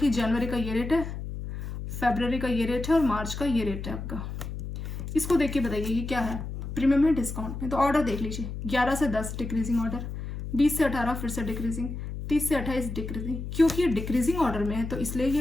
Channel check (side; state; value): left; noise; hum, 7 dB below the sound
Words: जनवरी का ये रेट है, फरवरी का ये रेट है और मार्च का ये रेट है आपका। इसको देख के बताइए ये क्या है, प्रीमियम है डिस्काउंट में। तो ऑर्डर देख लीजिए, 11 से 10 डिक्रीजिंग ऑर्डर, 20 से 18 फिर से डिक्रीजिंग, 30 से 28 डिक्रीजिंग। क्योंकि ये डिक्रीजिंग ऑर्डर में है तो इसलिए ये